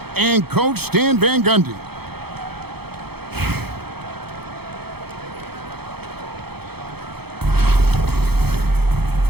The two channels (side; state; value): left; late; 0.96 ms